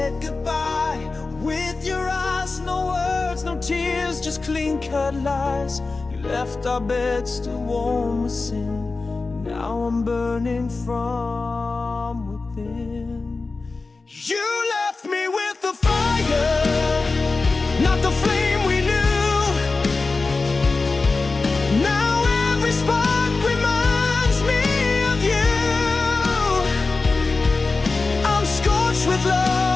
goodbye with your eyes, no words, no tears, just clean-cut lies. You left our bed still warm with sin. Now I'm burning from within. You left me with the fire, not the flame we knew. Now every spark reminds me of you. I'm scorched with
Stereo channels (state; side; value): quieter; right; 3.8 dB